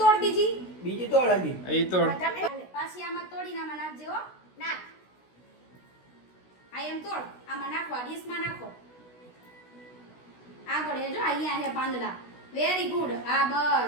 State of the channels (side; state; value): right; late; 16 ms